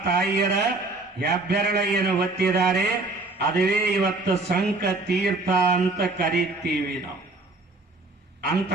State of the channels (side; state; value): left; quieter; 3.1 dB